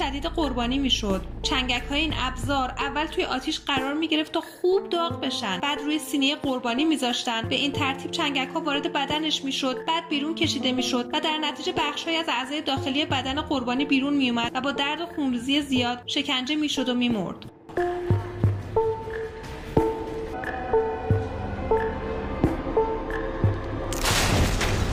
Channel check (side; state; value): both; identical; correlation 1.00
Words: قربانی می‌شد. چنگک‌های این ابزار اول توی آتیش قرار می‌گرفت تا خوب داغ بشن، بعد روی سینه قربانی می‌ذاشتن. به این ترتیب چنگک‌ها وارد بدنش می‌شد، بعد بیرون کشیده می‌شد و در نتیجه بخش‌هایی از اعضای داخلی بدن قربانی بیرون می‌اومد و با درد و خونریزی زیاد شکنجه می‌شد و می‌مرد.